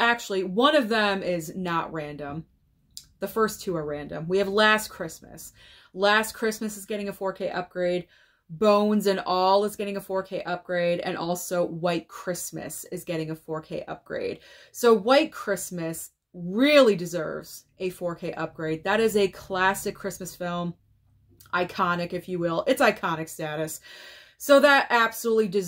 one of them is not random. The first 2 are random. We have Last Christmas. Last Christmas is getting a 4K upgrade. Bones and All is getting a 4K upgrade. And also White Christmas is getting a 4K upgrade. So White Christmas really deserves a 4K upgrade. That is a classic Christmas film. Iconic, if you will. It's iconic status. So that absolutely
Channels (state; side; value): identical; both; correlation 1.00